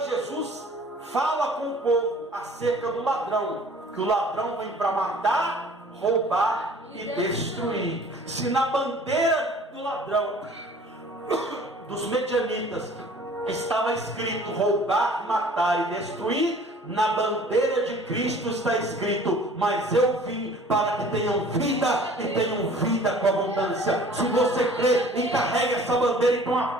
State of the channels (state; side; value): normal; both; correlation 0.49